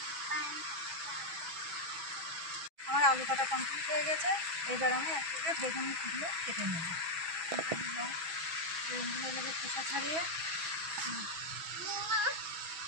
আমার আলু কাটা কমপ্লিট হয়ে গেছে। এবার আমি এক থেকে বেগুনগুলো কেটে নেব। বেগুনগুলো এভাবে খোসা ছাড়িয়ে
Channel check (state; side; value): late; left; 6.1 ms